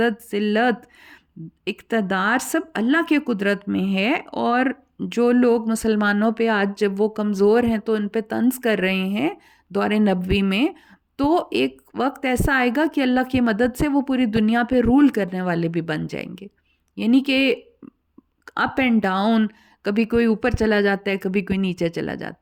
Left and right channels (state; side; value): identical; both; correlation 1.00